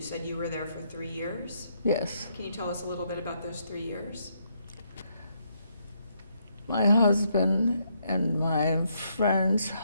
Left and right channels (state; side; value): inverted; both; correlation -0.74